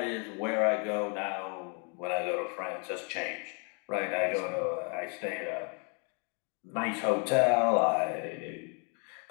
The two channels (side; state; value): right; quieter; 37.4 dB